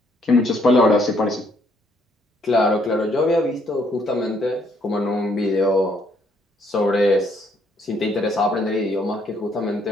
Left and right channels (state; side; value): normal; both; correlation 0.69